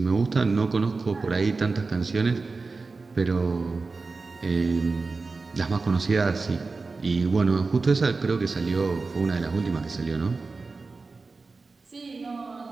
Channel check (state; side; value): quieter; left; 4.0 dB